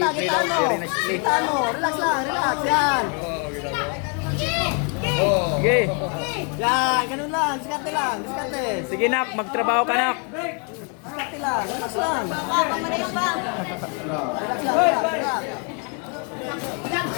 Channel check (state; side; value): quieter; right; 37.5 dB